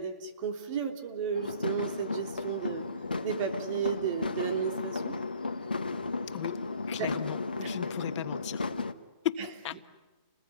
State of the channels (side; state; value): both; inverted; correlation -0.53